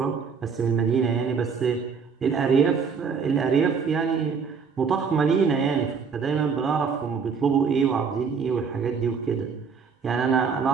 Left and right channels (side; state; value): left; quieter; 5.8 dB